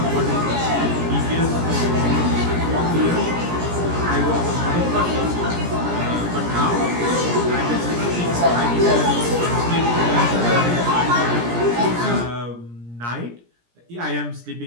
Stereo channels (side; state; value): left; late; 17 ms